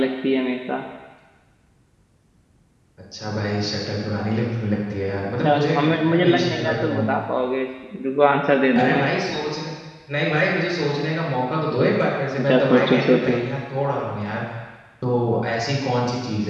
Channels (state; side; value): identical; both; correlation 1.00